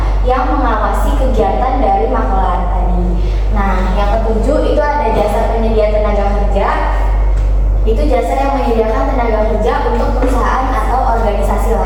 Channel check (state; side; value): identical; both; correlation 1.00